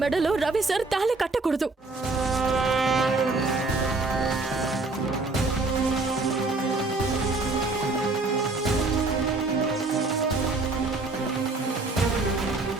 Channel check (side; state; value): left; quieter; 3.5 dB